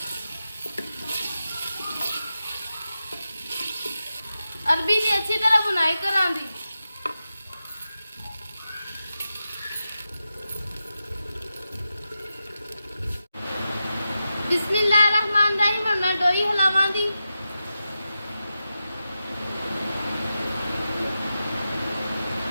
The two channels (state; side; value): inverted; both; correlation -0.91